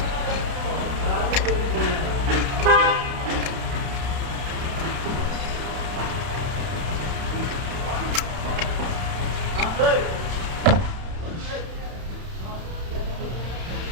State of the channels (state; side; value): late; left; 31 ms